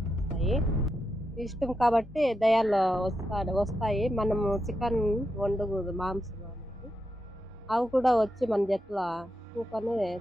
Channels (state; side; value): normal; both; correlation 0.86